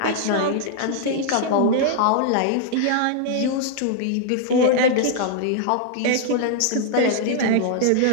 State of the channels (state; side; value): different; both; correlation -0.01